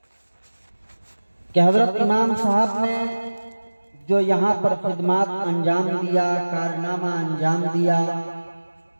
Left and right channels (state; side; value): inverted; both; correlation -1.00